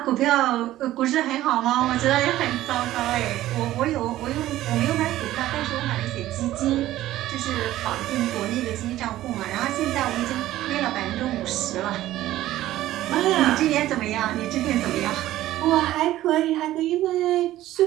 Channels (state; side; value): quieter; left; 14.7 dB